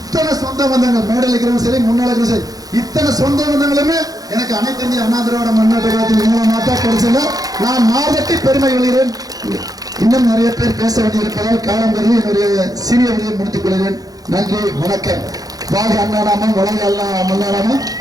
சொந்த பந்தங்கள் மேடையில் இருக்கிறவங்க சரி முன்னாள் இருக்கிற சரி இத்தனை சொந்த பந்தங்களுமே எனக்கு அனைத்து இந்திய அண்ணா திராவிட முன்னேற்ற கழகத்தின் மூலமாக தான் கிடைச்சல. நான் மாதத்தை பெருமை கொள்கிறேன். இன்னும் நிறைய பேர் பேச வேண்டியிருப்பதால் காலம் கருதி என்னுடைய சிறிய வழியை முடித்துக் கொள்கிறேன். நன்றி, வணக்கம். வாழ்க அண்ணாநாமம், வளர்க மல்லாநாமம்.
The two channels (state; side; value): late; left; 0.18 ms